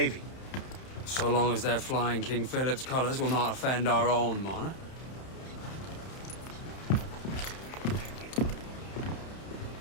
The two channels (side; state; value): right; late; 31 ms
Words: So long as they're flying King Philip's colours will not offend our own monarch.